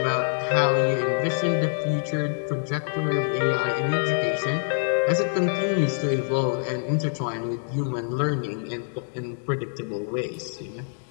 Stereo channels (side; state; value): right; silent; digital silence